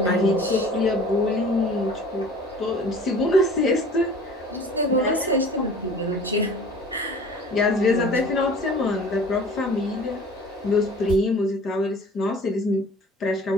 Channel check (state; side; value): normal; both; correlation 0.45